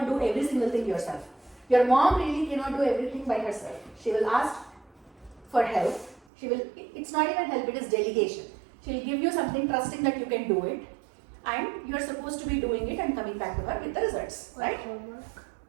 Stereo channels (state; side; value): drops out; left; at 6.2 s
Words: do every single thing yourself. Your mom really cannot do everything by herself. She will ask for help. It's not even help, it is delegation. She will give you something trusting that you can do it. And you are supposed to be doing it and coming back to her with the results, right? Homework.